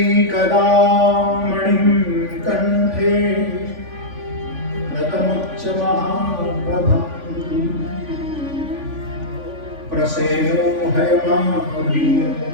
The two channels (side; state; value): left; late; 3.5 ms